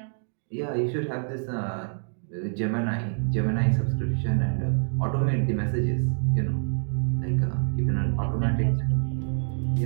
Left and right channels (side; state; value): left; silent; digital silence